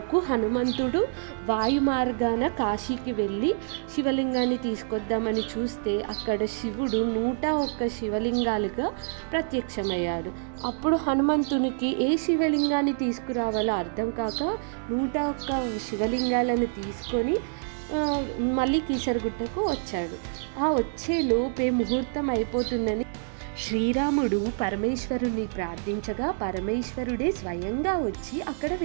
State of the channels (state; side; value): silent; left; digital silence